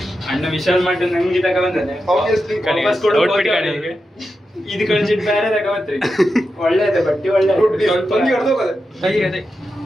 ಅಣ್ಣ ವಿಶಾಲ್ ಮಾಡಿ ನಂಗೆ ತಗ ಬಂದಾನೆ. ಇದು ಕಳಿಸಿಟ್ಟು ಬೇರೆ ತಗೋತ್ರಿ. ಒಳ್ಳೆಯದ ಬಟ್ಟಿ, ಒಳ್ಳೆ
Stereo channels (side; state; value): both; normal; correlation 0.89